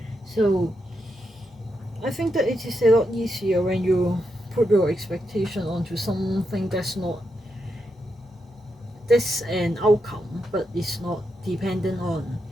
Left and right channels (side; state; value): both; normal; correlation 0.84